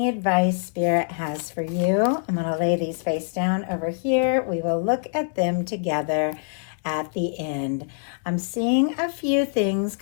advice Spirit has for you. I'm going to lay these face down over here. We will look at them together at the end. I'm seeing a few things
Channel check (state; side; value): silent; right; digital silence